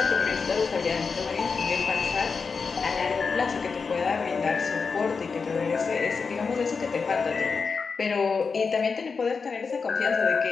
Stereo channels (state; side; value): quieter; right; 5.1 dB